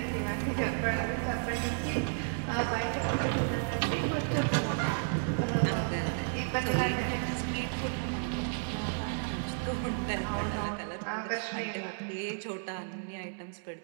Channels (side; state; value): left; silent; digital silence